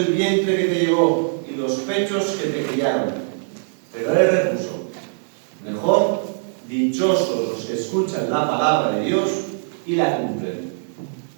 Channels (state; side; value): silent; left; digital silence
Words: vientre que te llevó y los pechos que te criaron. Pero él repuso, mejor, dichosos los que escuchan la palabra de Dios y la cumplen.